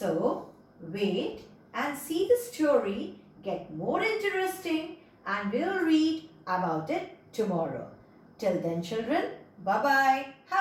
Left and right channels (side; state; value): both; identical; correlation 1.00